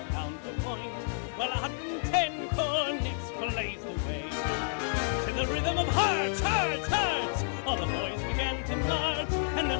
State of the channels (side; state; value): right; silent; 58 dB below the other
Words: counterpoint, while 110 cornets blazed away. To the rhythm of hearts, hearts, hearts, all the boys began to march, and